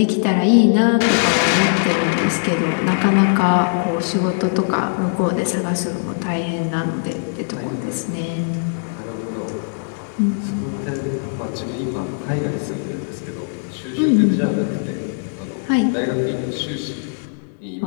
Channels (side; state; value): right; silent; 66 dB below the other